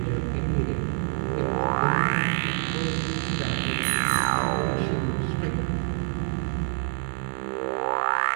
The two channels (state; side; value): silent; left; 61 dB below the other